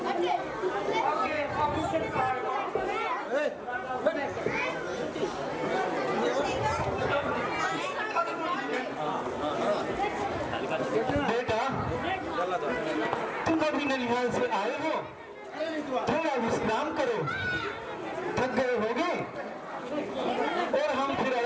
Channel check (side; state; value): both; identical; correlation 1.00